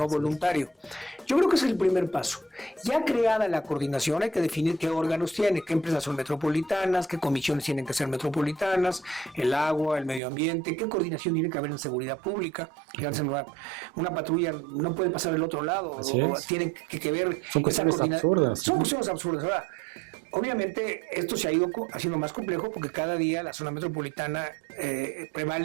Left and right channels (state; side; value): drops out; left; at 10.2 s